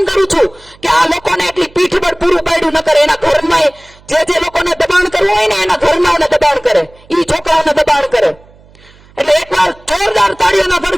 કરું છું કે આ લોકોને એટલી પીઠબળ પૂરું પાડ્યું ન કરે. એના ઘરમાં જે લોકોને દબાણ કરવું હોય ને એના ઘરનાઓને દબાણ કરે, એ છોકરાઓને દબાણ કરે. એટલે એકવાર જોરદાર તાળીઓના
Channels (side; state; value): right; noise; hum, 27 dB below the sound